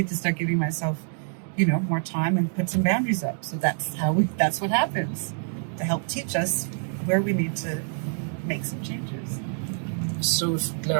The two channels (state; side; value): silent; left; 57 dB below the other